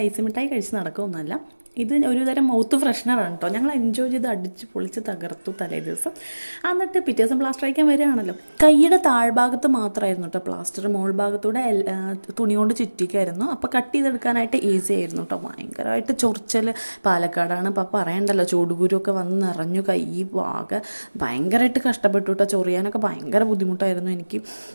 ഐസ് മിഠായി കഴിച്ച് നടക്കുമൊന്നുമല്ല. ഇത് ഒരു തരം മൗത്ത് ഫ്രഷ്നറാണ് കേട്ടോ. ഞങ്ങൾ എൻജോയ് ചെയ്ത് അടിച്ച് പൊളിച്ച് തകർത്തു തലേ ദിവസം. എന്നിട്ട് പിറ്റേ ദിവസം പ്ലാസ്റ്റർ അയക്കാൻ വരികയാണല്ലോ. കൈയുടെ താഴ്ഭാഗത്ത് മാത്രമായിരുന്നു കേട്ടോ പ്ലാസ്റ്റർ, മോൾ ഭാഗത്തൂടെ തുണി കൊണ്ട് ചുറ്റിക്കായിരുന്നു. അപ്പോൾ കട്ട് ചെയ്തെടുക്കാനായിട്ട് ഈസി ആയിരുന്നു കേട്ടോ. ഭയങ്കരമായിട്ട് ചൊറിച്ചൽ, പാലക്കാടാണ് അപ്പോൾ പറയണ്ടല്ലോ, ചൂടുകുരുവൊക്കെ വന്ന് നിറഞ്ഞു. കൈ ആകെ ഭയങ്കരമായിട്ട് കഷ്ടപ്പെട്ടു കേട്ടോ. ചൊറിയാനൊക്കെ ഭയങ്കര ബുദ്ധിമുട്ടായിരുന്നു എനിക്ക്.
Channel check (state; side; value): inverted; both; correlation -1.00